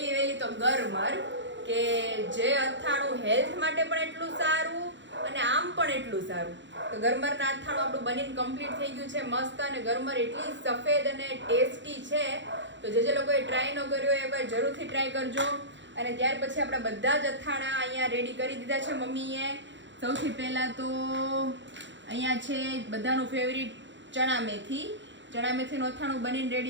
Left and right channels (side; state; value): left; late; 0.54 ms